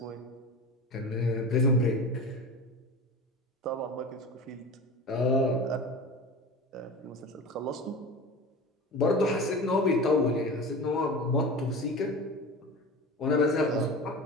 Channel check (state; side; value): normal; both; correlation 0.31